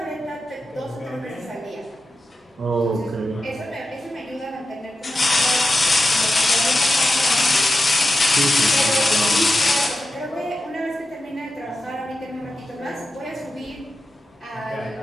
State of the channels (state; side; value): normal; both; correlation 0.91